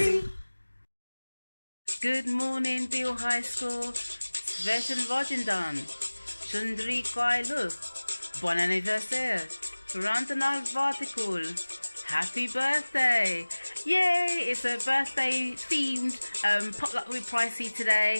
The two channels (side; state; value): both; inverted; correlation -1.00